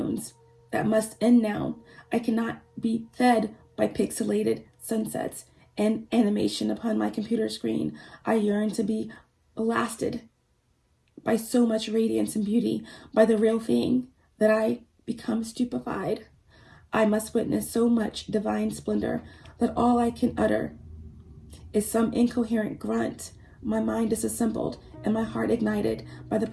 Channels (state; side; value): identical; both; correlation 1.00